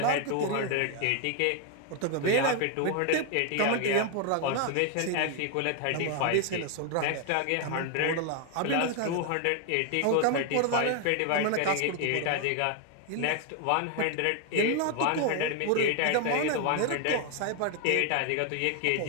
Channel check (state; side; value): different; both; correlation 0.01